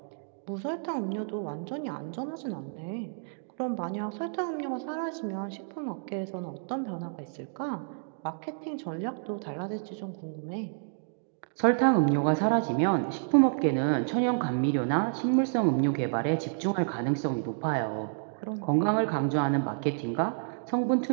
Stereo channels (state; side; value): silent; left; digital silence